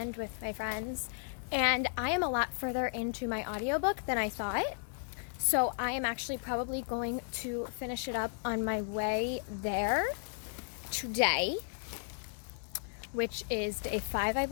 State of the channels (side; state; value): right; silent; 55 dB below the other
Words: with my friends. And I am a lot further into my audiobook than I thought. So I am actually probably going to finish it up on my way there today, which is day 5, I